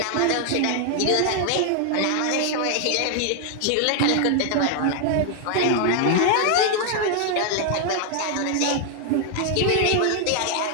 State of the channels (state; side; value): different; both; correlation 0.00